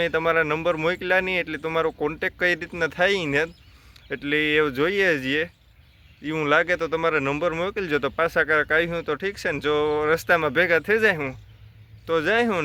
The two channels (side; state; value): both; identical; correlation 1.00